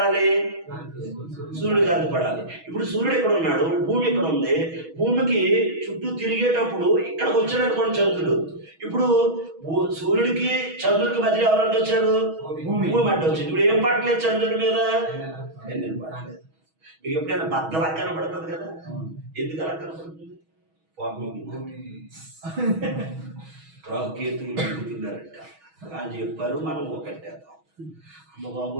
సూర్యుడు కాంతి పడాలి. ఇప్పుడు సూర్యుడు ఇక్కడ ఉన్నాడు, భూమి ఇక్కడ ఉంది. భూమికి చుట్టూ తిరిగేటప్పుడు ఇక్కడికి వచ్చాడు అనుకోండి చంద్రుడు. ఇప్పుడు సూర్యుడికి చంద్రుడికి మధ్య ఎవరంటే వచ్చారు? భూమి అంటే వచ్చింది. ఇప్పుడు ఏం పడలేదు చంద్రుడి మీద? ఎన్నెలు పడలేదు. మీకు ఎప్పుడైనా బద్దలా కనపడుతుంది కదా? ఎందుకు అలా కనపడుతుంది? రాకేతులు తిరుగుతున్నారంట అని చెప్పారు. మనం ఒకటేద్దాం. అమ్మ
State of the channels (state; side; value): late; left; 6.2 ms